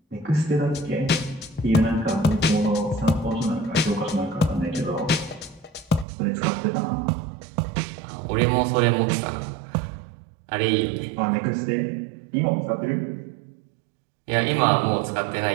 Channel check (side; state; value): left; drops out; at 6.1 s